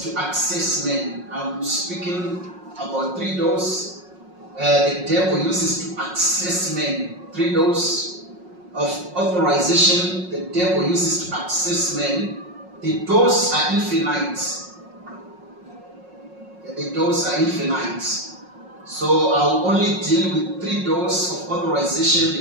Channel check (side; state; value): left; late; 5.5 ms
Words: to access men. I'm speaking about 3 doors the devil uses to access men. 3 doors of authorization the devil uses to access men. The doors are infinite. The doors are infinite. So I'll only deal with 3 doors of